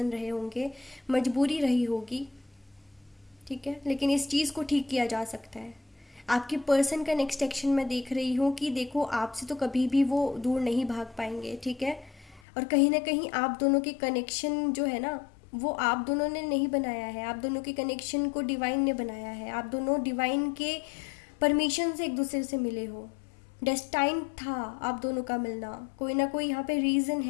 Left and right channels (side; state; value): right; drops out; at 12.4 s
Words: रहे होंगे, मजबूरी रही होगी, ठीक है, लेकिन इस चीज़ को ठीक किया जा सकता है। आपके पर्सन का नेक्स्ट एक्शन मैं देख रही हूँ कि देखो, आपसे तो कभी भी वो दूर नहीं भाग पाएंगे, ठीक है। और कहीं ना कहीं आप दोनों के कनेक्शन जो है ना, वो आप दोनों ने नहीं बनाया है, आप दोनों के कनेक्शन को डिवाइन ने बनाया है। आप दोनों डिवाइन के परमिशन से एक दूसरे से मिले हो, डेस्टाइन था आप दोनों का मिलना, कोई ना कोई यहाँ पे रीज़न